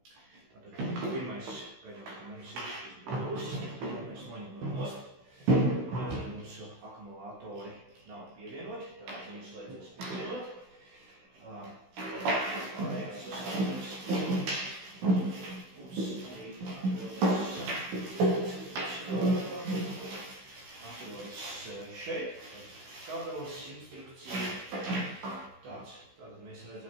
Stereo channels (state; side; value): late; left; 16 ms